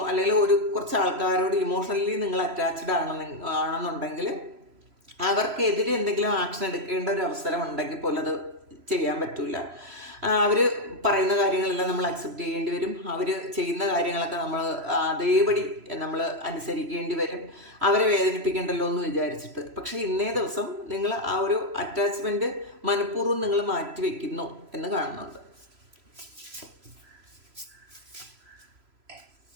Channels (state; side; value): late; left; 3.0 ms